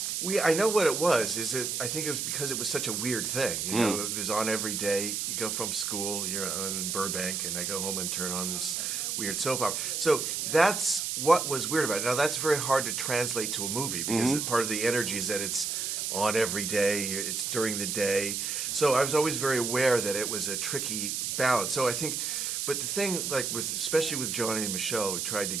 I know what it was. I think it was because it was such a weird thing. You know, it was on every day. You go from school, you're in Burbank, and I go home and turn on this weird soap opera. So that's what was weird about it. Now, that's very hard to translate to a movie because part of the energy is that it's on every day, it's during the day. So I was always very aware that it was a tricky balance. So I think, but the thing, like especially with Johnny and Michelle, we tried to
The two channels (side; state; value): right; noise; hiss, 1 dB below the sound